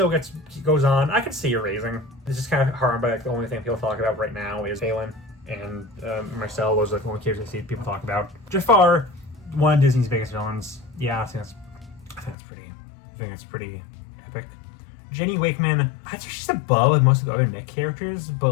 goes on, I could see her raising. It's just kind of hard, but like the only thing people talk about right now is Phelan and Marcel. Those are like the only characters I see people talk about. Jafar, one of Disney's biggest villains. Yeah, I think that's pretty epic. Jenny Wakeman, I'd say she's above most of the other Nick characters,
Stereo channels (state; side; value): drops out; right; at 12.4 s